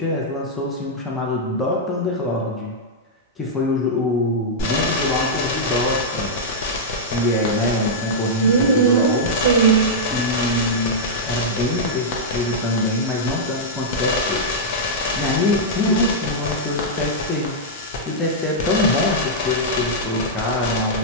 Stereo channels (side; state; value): both; normal; correlation -0.08